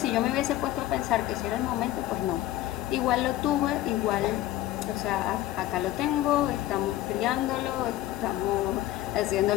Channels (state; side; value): quieter; right; 14.7 dB